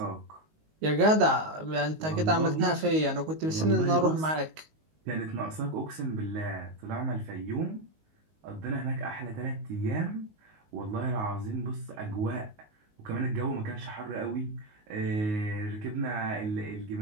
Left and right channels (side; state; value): left; late; 19 ms